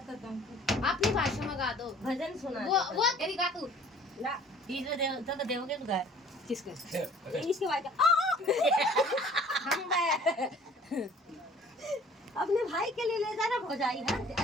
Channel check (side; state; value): both; normal; correlation 0.51